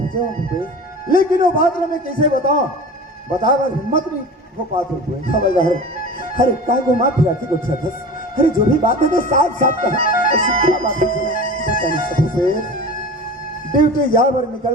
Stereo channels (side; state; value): both; normal; correlation 0.35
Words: हूँ भूपेश। लेकिन वो बात मैं कैसे बताऊं बता बार हिम्मत नहीं हो पाते हुए हवलदार। अरे का घुमा फिरा के गुस्सा था। अरे जो भी बात है तो साफ साफ कहा। ऐसी क्या बात है बता नहीं सकते। ड्यूटी यहाँ पर निकल